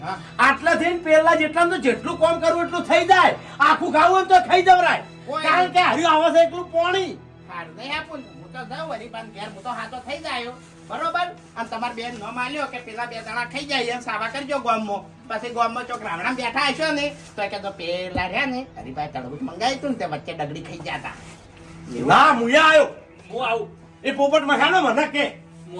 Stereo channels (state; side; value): identical; both; correlation 1.00